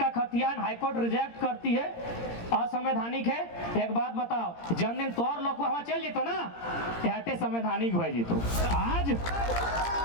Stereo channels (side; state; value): right; late; 17 ms